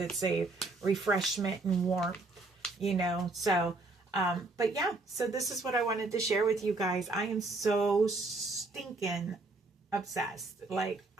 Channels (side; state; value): left; quieter; 3.3 dB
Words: a refreshment and warmth, So, but yeah, so this is what I wanted to share with you guys. I am so stinking obsessed. Like,